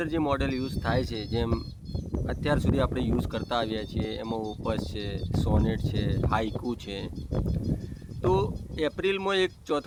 જે મોડલ યુઝ થાય છે, જેમ અત્યાર સુધી આપણે યુઝ કરતા આવ્યા છીએ, એમાં ઓપસ છે, સોનેટ છે, હાઇકુ છે. તો એપ્રિલમાં એક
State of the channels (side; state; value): both; identical; correlation 1.00